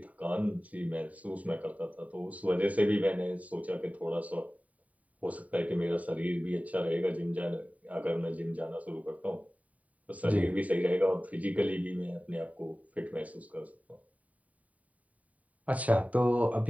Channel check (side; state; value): left; late; 0.070 ms